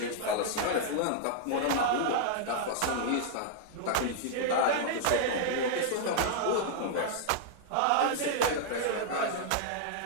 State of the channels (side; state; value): both; different; correlation -0.01